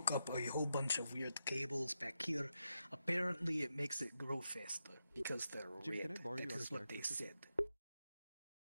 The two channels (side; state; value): both; inverted; correlation -0.87